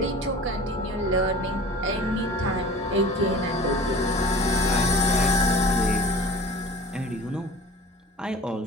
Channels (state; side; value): normal; both; correlation 0.41